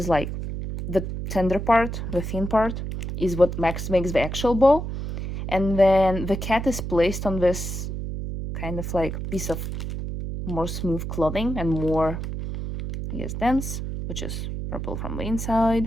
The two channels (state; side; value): noise; right; hum, 5 dB below the sound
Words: like the tender part, the thin part, is what makes the actual bow. And then the cat is placed on this kind of like piece of more smooth clothing and more, I guess, dense, which is purple from the